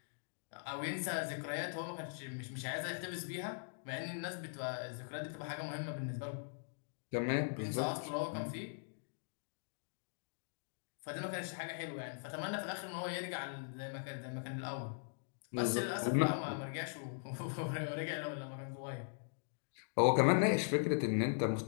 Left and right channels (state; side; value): silent; right; digital silence